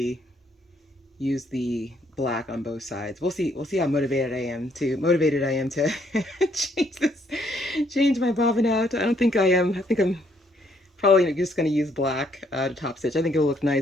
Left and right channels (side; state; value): both; normal; correlation 0.69